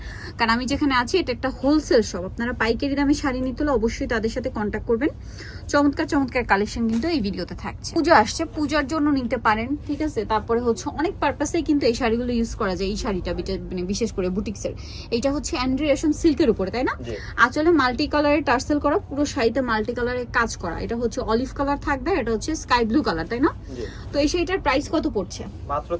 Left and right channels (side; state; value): both; identical; correlation 1.00